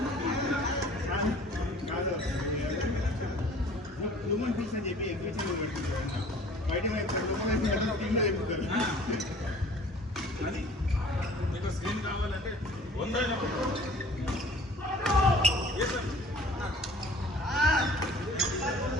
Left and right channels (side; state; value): both; normal; correlation 0.49